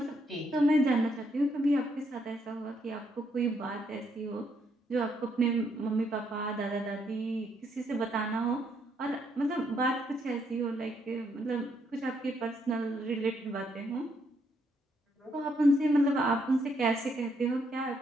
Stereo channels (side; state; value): both; normal; correlation 0.74